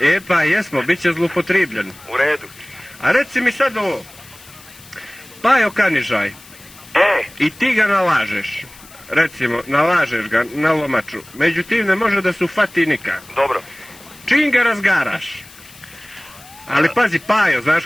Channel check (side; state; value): left; noise; hiss, 22 dB below the sound